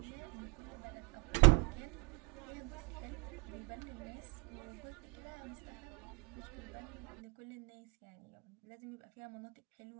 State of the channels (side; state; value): left; quieter; 26.5 dB